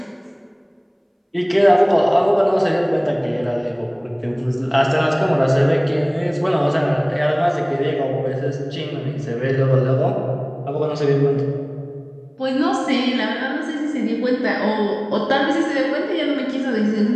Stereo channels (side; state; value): both; identical; correlation 1.00